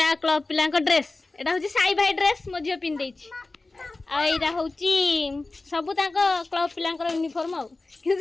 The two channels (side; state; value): right; quieter; 3.3 dB